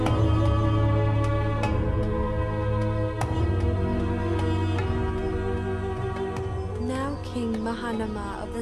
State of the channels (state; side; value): identical; both; correlation 1.00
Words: Now King Mahanama of the